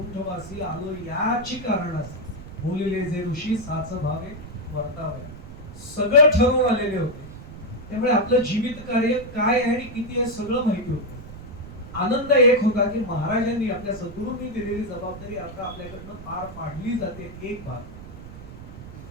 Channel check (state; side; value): noise; right; rumble, 14 dB below the sound